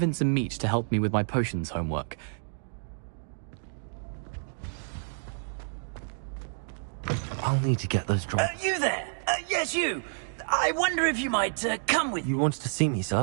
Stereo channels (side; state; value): left; silent; digital silence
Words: a meat to help me with my potions homework. I'll need to get those dry... You there! Yes, you! I wonder if you might come with... You wanted to see me,